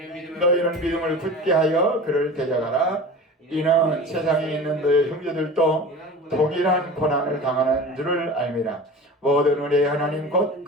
너희는 믿음을 굳게 하여 그를 데려가라. 이는 세상에 있는 너희 형제들도 동일한 고난을 당하는 줄을 알미라. 모든 우리의 하나님 곧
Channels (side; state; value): both; normal; correlation 0.35